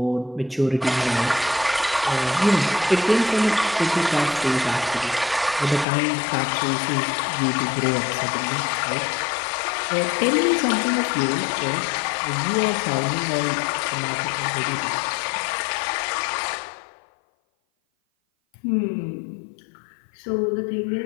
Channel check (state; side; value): drops out; right; at 5.9 s